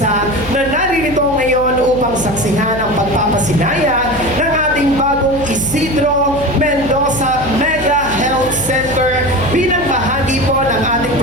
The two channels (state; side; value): noise; left; hum, 13 dB below the sound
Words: na naririto ngayon upang saksihan ang pagpapasinaya ng ating bagong Isidro Mendoza Mega Health Center bilang bahagi po ng ating